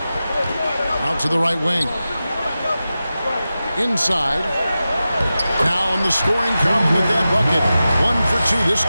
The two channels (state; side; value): inverted; both; correlation -0.93